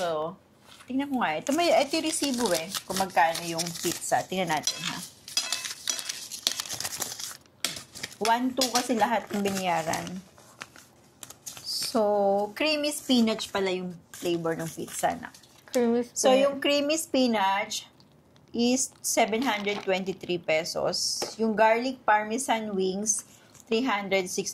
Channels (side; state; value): both; identical; correlation 1.00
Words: tingnan ko nga. Ito yung resibo kung magkano yung pizza. Tingnan natin, ha. 1-2 kasi lahat ng binayaran. So, creamy spinach pala yung flavor ng pizza na. Creamy spinach. So, yung creamy spinach is 723 pesos. Yung garlic parmesan wings,